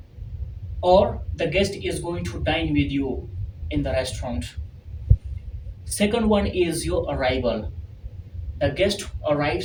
or the guest is going to dine with you in the restaurant. Second one is your arrival. The guest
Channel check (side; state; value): both; identical; correlation 1.00